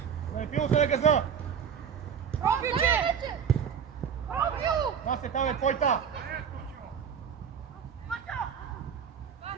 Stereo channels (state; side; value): quieter; left; 7.5 dB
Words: Да не пило се на газа! Насе, там е твойта!